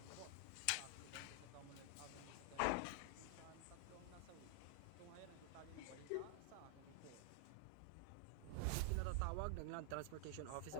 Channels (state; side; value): different; both; correlation 0.00